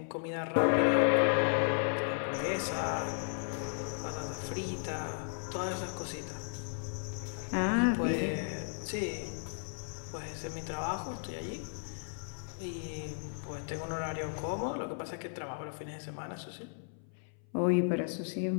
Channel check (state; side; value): silent; right; 55 dB below the other